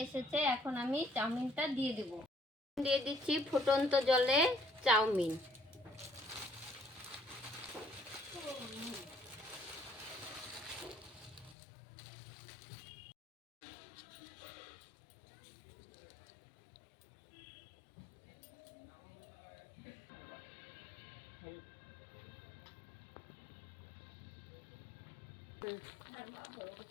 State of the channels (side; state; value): right; drops out; at 11.6 s